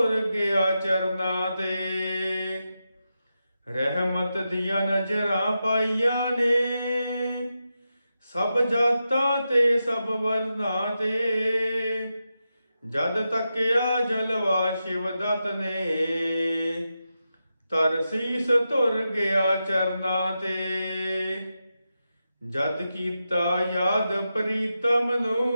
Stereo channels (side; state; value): both; inverted; correlation -0.89